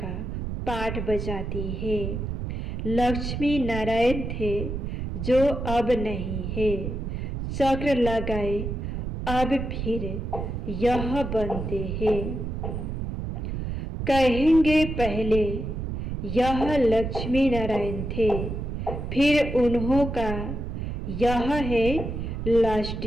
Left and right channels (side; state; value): right; noise; rumble, 4 dB below the sound